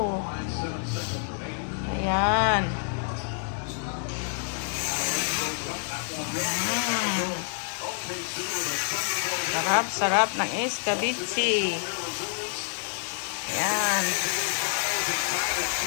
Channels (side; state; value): right; silent; 60 dB below the other